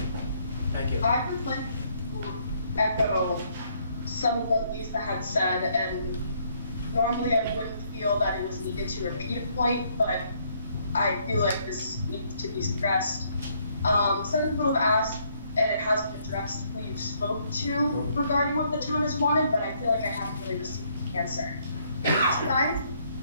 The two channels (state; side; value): inverted; both; correlation -0.69